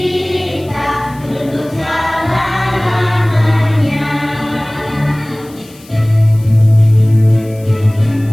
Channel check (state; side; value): noise; left; hiss, 25 dB below the sound